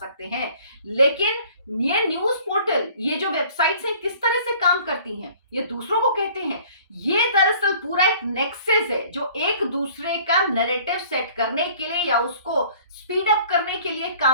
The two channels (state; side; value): inverted; both; correlation -0.52